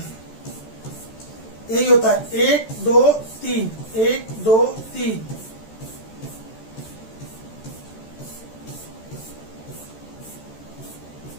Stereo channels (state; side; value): late; right; 14 ms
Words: यही होता है 1 2 3, 1 2 3।